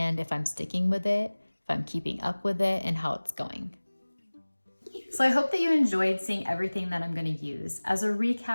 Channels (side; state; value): both; inverted; correlation -1.00